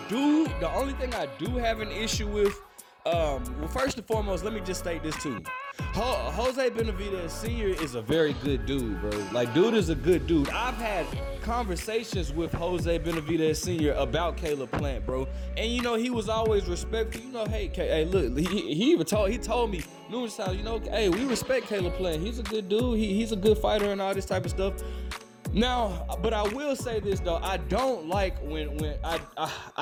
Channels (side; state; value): both; identical; correlation 1.00